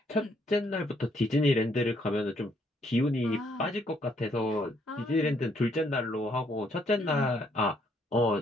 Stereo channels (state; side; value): normal; both; correlation 0.69